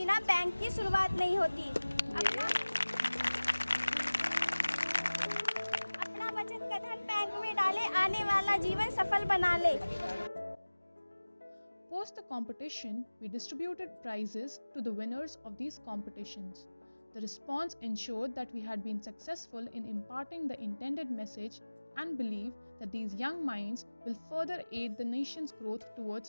बैंक की शुरुआत नहीं होती। में डाले, आने वाला जीवन सफल बना ले। Post the competition, we distributed prizes to the winners of these competitions. The response ensured that we had been successful in imparting the intended message and believe that these young minds will further aid the nation's growth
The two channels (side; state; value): both; inverted; correlation -1.00